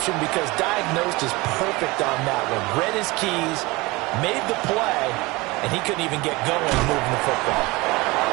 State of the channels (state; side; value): quieter; left; 23.0 dB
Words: because diagnosed is perfect on that one. Read his keys, made the play, and he couldn't even get going moving the football.